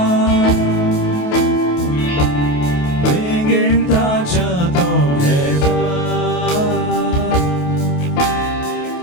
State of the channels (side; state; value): right; late; 28 ms